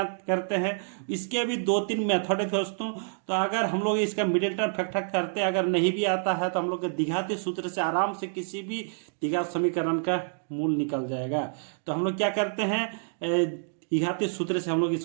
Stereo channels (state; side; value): silent; left; digital silence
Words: करते हैं। इसके भी 2-3 मेथड है दोस्तों। तो अगर हम लोग इसका मिडिल टर्म फैक्टर करते, अगर नहीं भी आता है तो हम लोग द्विघाती सूत्र से आराम से किसी भी द्विघात समीकरण का मूल निकल जाएगा। तो हम लोग क्या करते हैं, द्विघाती सूत्र से हम लोग